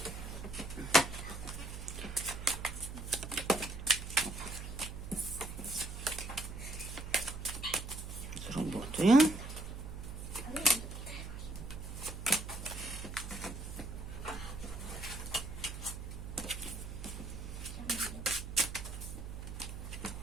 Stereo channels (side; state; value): right; noise; hum, 8 dB below the sound